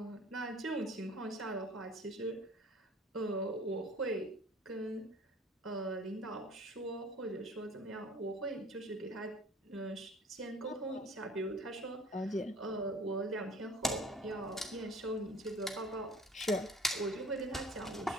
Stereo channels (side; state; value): both; normal; correlation 0.48